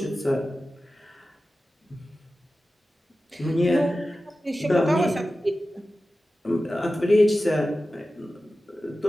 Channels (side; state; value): both; normal; correlation 0.94